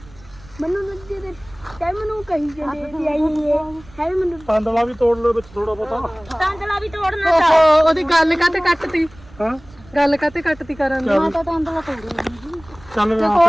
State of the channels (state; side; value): noise; right; rumble, 23 dB below the sound